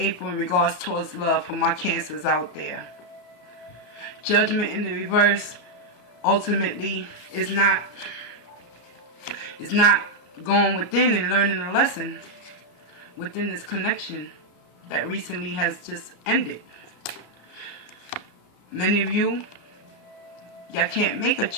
in regards towards love for my Cancers out there. Judgment in the reverse ultimately is not going within and learning a lesson within this connection that recently has just ended. Many of y'all can't make a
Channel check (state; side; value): late; right; 34 ms